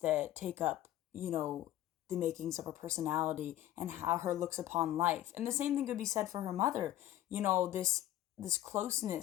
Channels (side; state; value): right; quieter; 13.5 dB